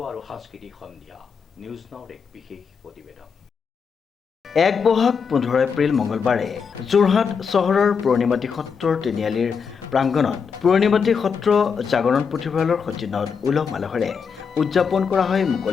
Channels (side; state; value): right; quieter; 6.1 dB